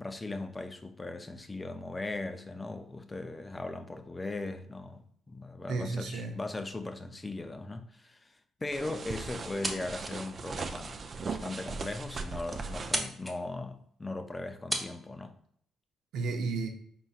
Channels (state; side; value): normal; both; correlation 0.86